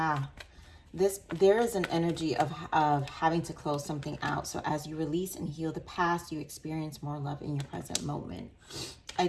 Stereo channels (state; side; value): identical; both; correlation 1.00